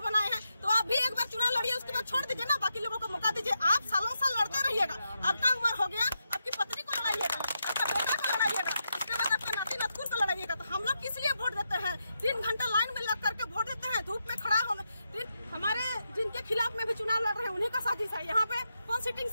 बनाए हैं, तो आप भी एक बार चुनाव लड़िए, उसके बाद छोड़ दीजिए ना, बाकी लोगों को मौका दीजिए। आप सालों साल लड़ते रहिएगा, आपका उम्र हो गया, आपकी पत्नी को लड़ाइएगा, आपका बेटा को लड़ाइएगा, उसके बाद आपके नाती नतकुर को लड़ाइएगा। तो हम लोग किस लिए वोट देते हैं? 3 घंटा लाइन में लग करके वोट देते हैं, धूप में खड़ा होना। हमारे जिनके खिलाफ में भी चुनाव लड़ रहे हैं उन्हीं का साजिश है। यहाँ पे कौन सिटिंग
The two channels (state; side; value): inverted; both; correlation -0.85